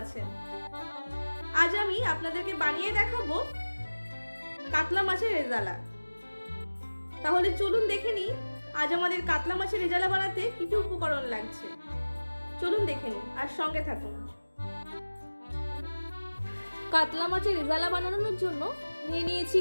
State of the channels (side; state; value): both; inverted; correlation -1.00